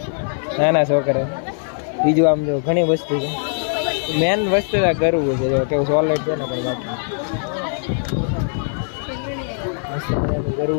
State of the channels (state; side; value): silent; right; 61 dB below the other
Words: નાના છોકરા. બીજું આમ જો ઘણી વસ્તુ છે, મેન વસ્તુ કરવું છે. જો કેવું સોલેટ છે ને ભાઈ, બાકી મસ્ત મજાનું